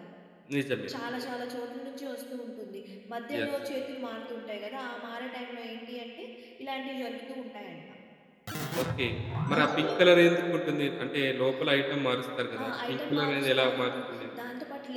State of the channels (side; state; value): both; identical; correlation 1.00